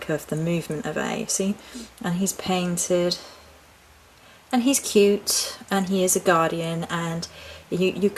of the movement of air, see? And he's painted. And he's cute. And he is a guardian. And you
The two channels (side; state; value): both; identical; correlation 1.00